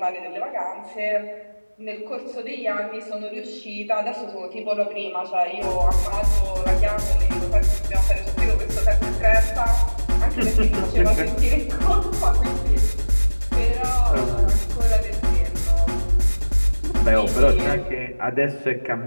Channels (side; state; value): both; inverted; correlation -1.00